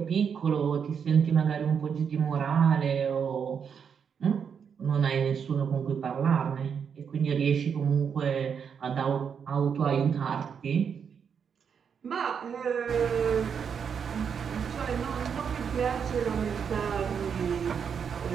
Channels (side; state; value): left; quieter; 7.0 dB